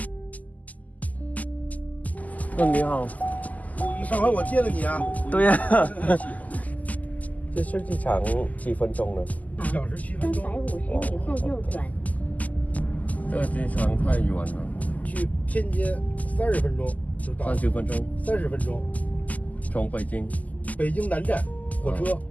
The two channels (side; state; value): right; late; 0.077 ms